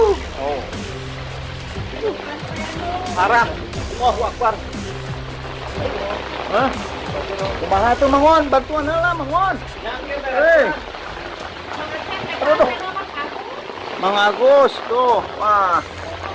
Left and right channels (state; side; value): identical; both; correlation 1.00